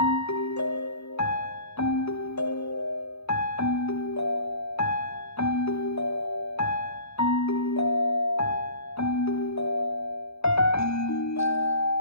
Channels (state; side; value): late; right; 0.79 ms